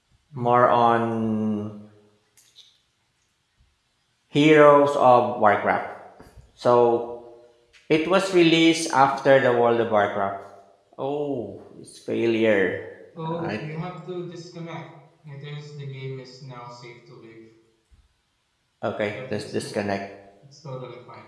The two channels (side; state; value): both; identical; correlation 1.00